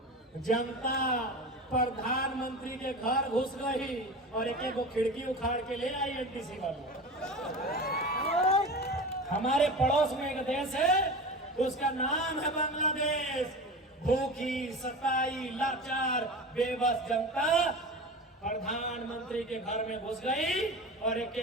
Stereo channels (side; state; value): both; normal; correlation 0.31